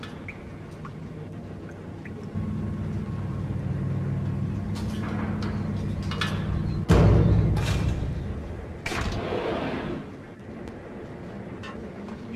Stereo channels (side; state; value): both; identical; correlation 1.00